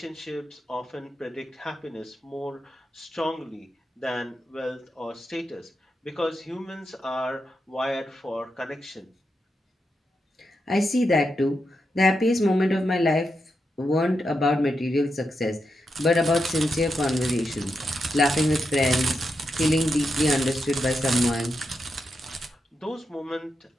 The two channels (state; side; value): normal; both; correlation 0.85